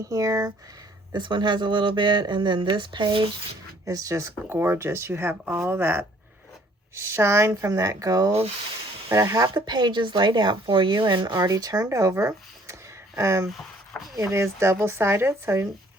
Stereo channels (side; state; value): both; normal; correlation 0.60